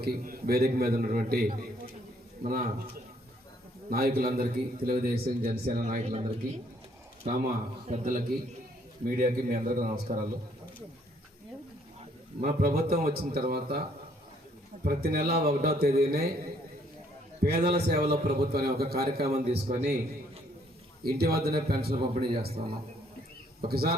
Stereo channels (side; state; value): both; normal; correlation 0.66